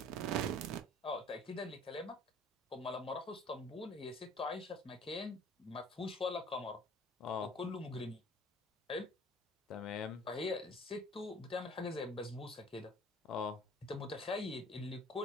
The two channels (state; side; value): normal; both; correlation 0.51